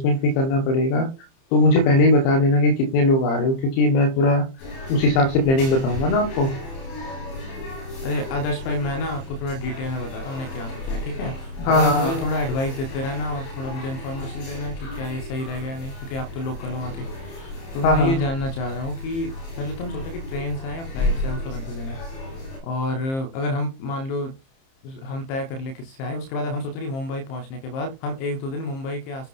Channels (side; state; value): right; late; 30 ms